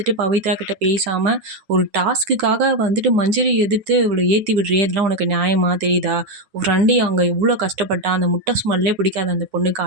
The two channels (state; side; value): late; left; 10 ms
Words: பவித்ரா கிட்ட பேசாம, ஒரு டாஸ்க்குக்காக வந்துட்டு மஞ்சரி எதிர்த்து இவள ஏத்தி விடுறியே! இதெல்லாம் உனக்கு நியாயமா? தெரியுதா? உன் ஃப்ரெண்டு அங்க எவ்ளோ கஷ்டப்பட்டா! அந்த முட்டை ஸ்மெல்லே பிடிக்காது அந்த பொண்ணுக்கு.